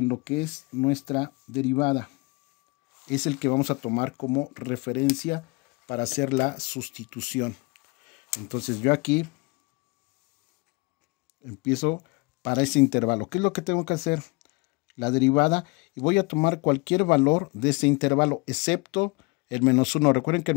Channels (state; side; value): quieter; right; 27.4 dB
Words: lo que es nuestra derivada. Es el que vamos a tomar como referencia para hacer la sustitución. Entonces yo aquí empiezo para ese intervalo. ¿Qué es lo que tengo que hacer? La derivada, y voy a tomar cualquier valor de ese intervalo, excepto el menos 1. Recuerden que el